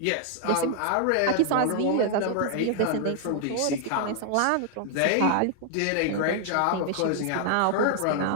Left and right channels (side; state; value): both; different; correlation 0.00